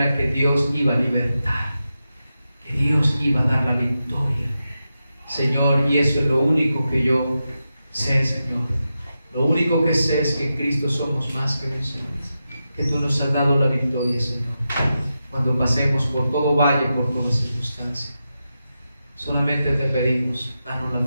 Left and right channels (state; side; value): inverted; both; correlation -0.90